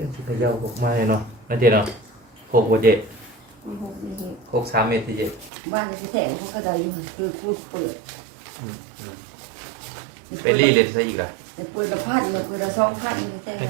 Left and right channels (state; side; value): drops out; left; at 5.5 s